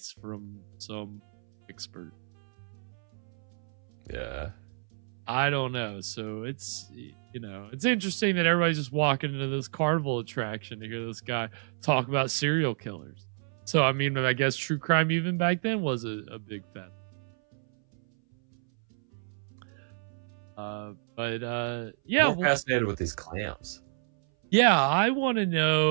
from some expert. Yeah. I don't know. So it's, it's interesting that everybody's just walking into this carnival attraction to hear this guy talk about serial killers. So, I mean, I guess true crime even back then was a big thing. Yeah. I'm fascinated with these clams. Yeah, I want to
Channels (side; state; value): left; silent; 58 dB below the other